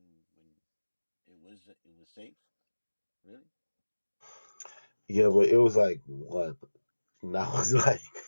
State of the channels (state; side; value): inverted; both; correlation -1.00